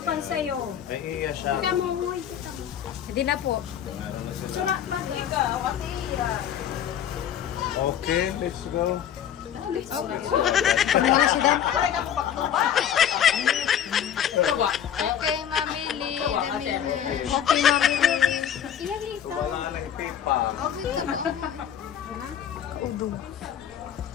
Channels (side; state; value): right; quieter; 9.5 dB